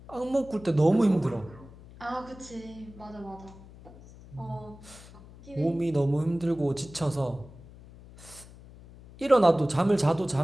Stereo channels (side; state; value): left; noise; hum, 20 dB below the sound